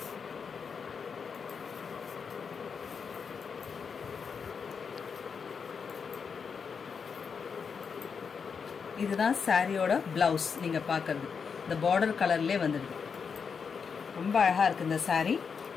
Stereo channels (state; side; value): quieter; right; 6.0 dB